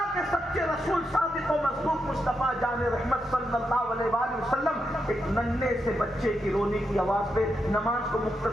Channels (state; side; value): normal; both; correlation 0.84